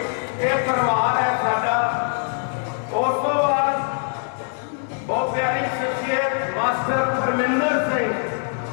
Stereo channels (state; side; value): silent; right; 59 dB below the other